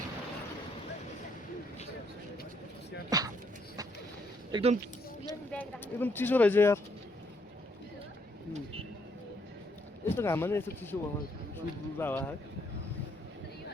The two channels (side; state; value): both; normal; correlation 0.71